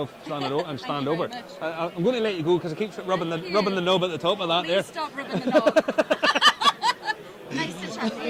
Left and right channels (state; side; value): identical; both; correlation 1.00